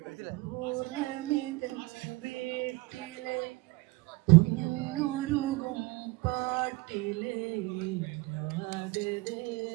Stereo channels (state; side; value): quieter; left; 22.7 dB